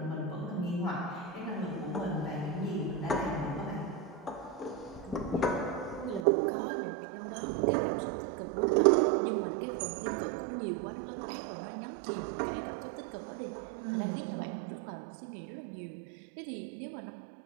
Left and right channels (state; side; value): drops out; left; at 6.2 s